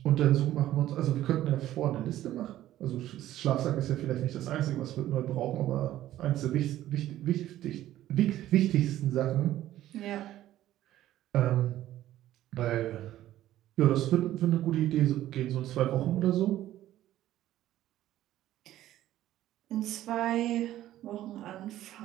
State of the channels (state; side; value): quieter; left; 13.6 dB